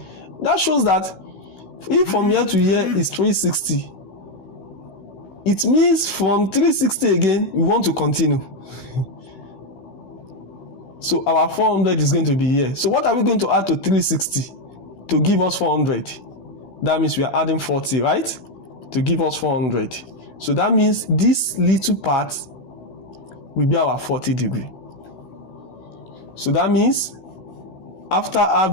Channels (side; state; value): right; late; 16 ms